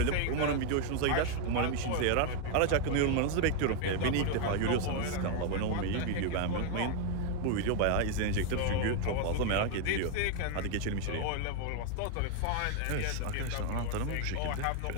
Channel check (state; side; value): different; both; correlation 0.01